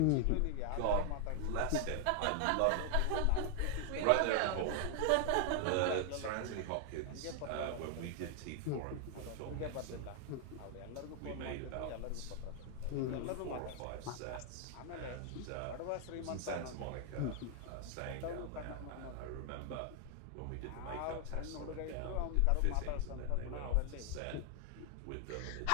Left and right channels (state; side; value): different; both; correlation 0.00